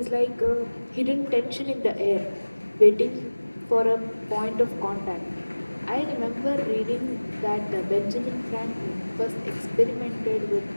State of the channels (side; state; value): both; inverted; correlation -1.00